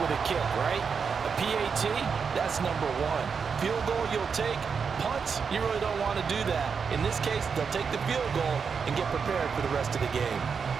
a kick, right? A PAT, that's number 1. Field goal you'll take. Punts, you really don't want to do that. In this case, they'll take the field goal and get prepared for the rest of the game.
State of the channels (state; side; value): quieter; left; 5.9 dB